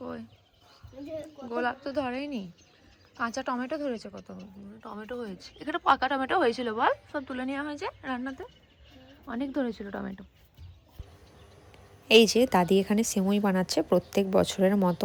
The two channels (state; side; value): identical; both; correlation 1.00